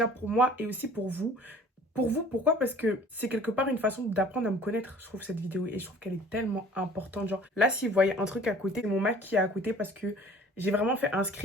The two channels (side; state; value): both; normal; correlation 0.49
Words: pour moi et aussi pour vous. Pour vous, pourquoi? Parce que c'est quelque part une façon d'apprendre à me connaître, je trouve, cette vidéo. Et je trouve qu'elle est tellement importante. Genre, là, si vous voyez un truc à côté, c'est mon Mac qui est à côté parce que j'ai vraiment fait un